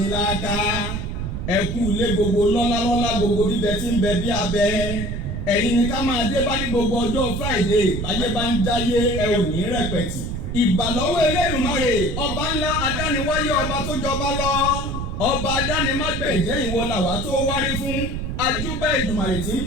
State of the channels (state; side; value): noise; right; rumble, 4 dB below the sound